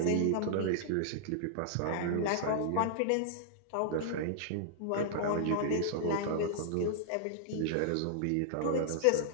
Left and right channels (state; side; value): different; both; correlation -0.01